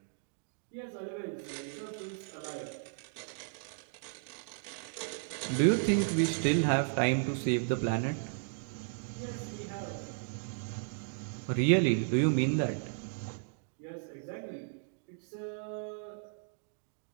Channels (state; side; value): silent; left; digital silence